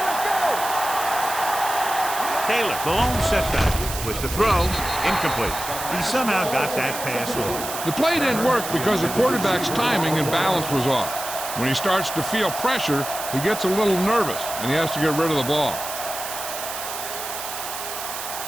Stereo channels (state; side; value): noise; right; hiss, 7 dB below the sound